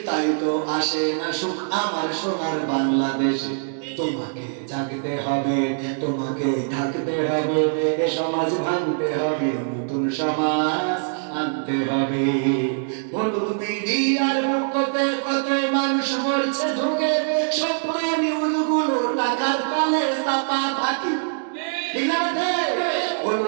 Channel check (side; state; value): left; silent; digital silence